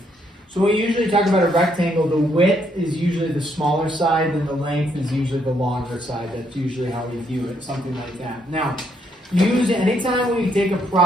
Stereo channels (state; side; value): normal; both; correlation 0.73